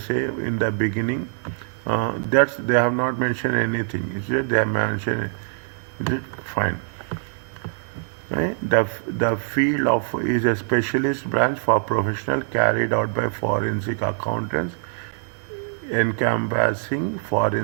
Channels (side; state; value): left; silent; digital silence